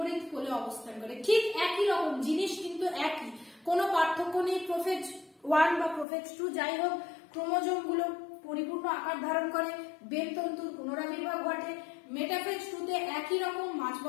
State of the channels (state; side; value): drops out; right; at 6.1 s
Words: কোলে অবস্থান করে, ঠিক একই রকম জিনিস কিন্তু একই, কোনো পার্থক্য নেই। প্রোফেজ 1 বা প্রোফেজ 2 যাই হোক, ক্রোমোজোম গুলো পরিপূর্ণ আকার ধারণ করে, বেলতন্তুর পুনরাবির্ভাব ঘটে। মেটাফেজ 2 তে একই রকম মাঝ